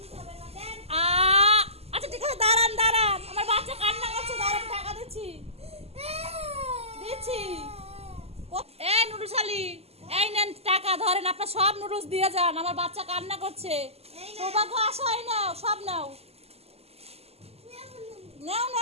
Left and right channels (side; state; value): left; late; 0.29 ms